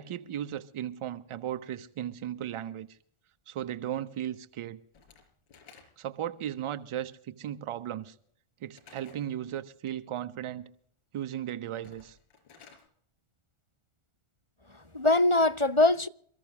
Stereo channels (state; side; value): late; left; 1.4 ms